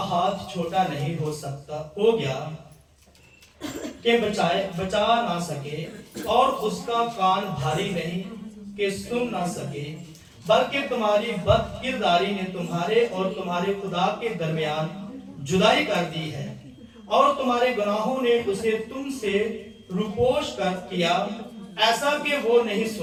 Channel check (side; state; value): both; identical; correlation 1.00